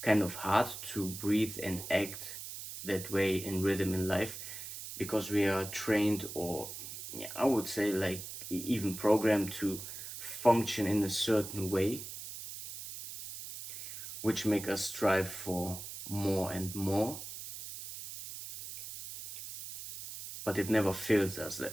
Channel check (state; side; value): noise; right; hiss, 10 dB below the sound